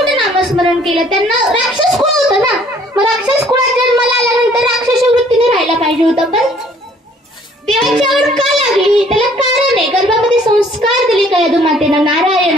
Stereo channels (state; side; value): normal; both; correlation 0.59